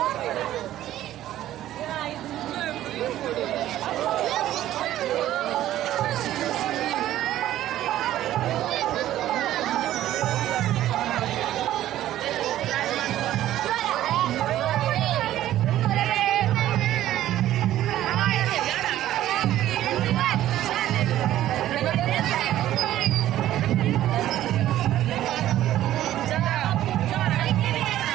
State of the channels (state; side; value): quieter; left; 13.3 dB